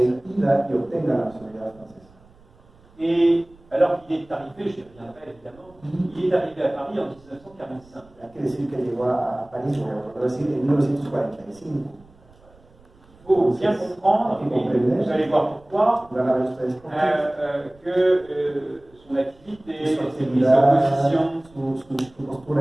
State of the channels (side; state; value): right; noise; rumble, 28 dB below the sound